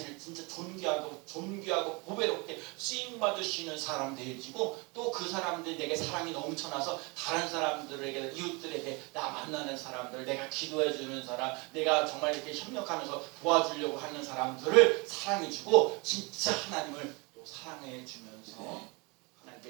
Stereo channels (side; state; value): left; quieter; 28.6 dB